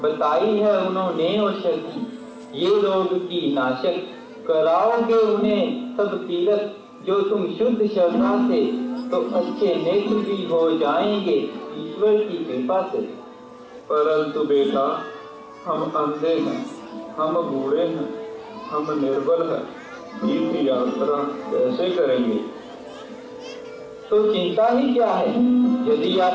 बताई है उन्होंने औषधि, ये रोग की नाशक। कराओगे उन्हें सब तीरथ, जो तुम शुद्ध श्रद्धा से, तो अच्छे नेत्र भी हो जाएंगे ईश्वर की कृपा से। परंतु बेटा, हम अंधे हैं, हम बूढ़े हैं, हम निर्बल हैं, तीर्थ यात्रा कैसे करेंगे? तो चिंता ही क्या है? यदि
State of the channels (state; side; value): identical; both; correlation 1.00